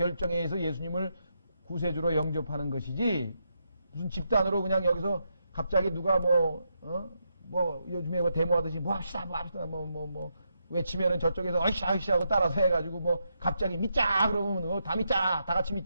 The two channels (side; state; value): both; inverted; correlation -0.82